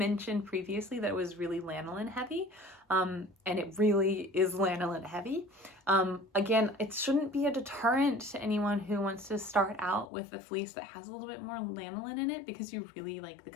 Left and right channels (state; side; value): drops out; right; at 10.1 s